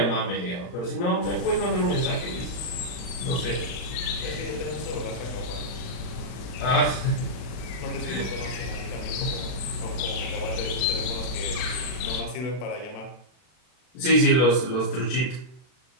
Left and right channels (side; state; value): right; late; 40 ms